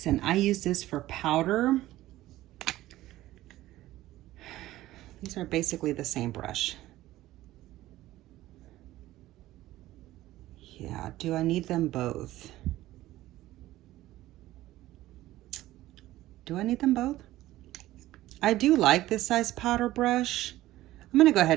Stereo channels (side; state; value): left; quieter; 15.8 dB